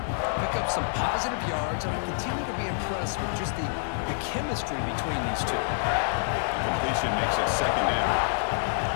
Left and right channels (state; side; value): silent; right; digital silence